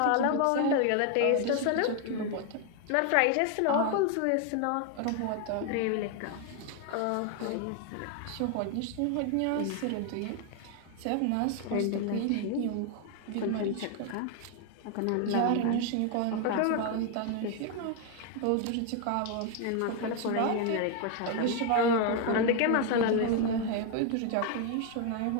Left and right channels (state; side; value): different; both; correlation 0.01